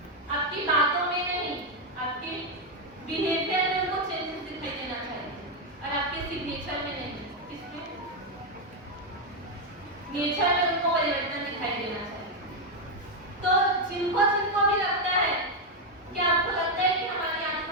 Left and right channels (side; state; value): both; normal; correlation 0.03